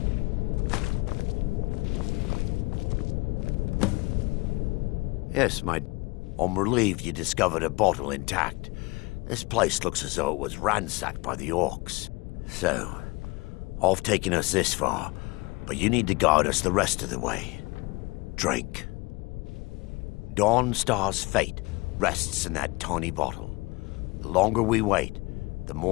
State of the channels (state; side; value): quieter; right; 25.0 dB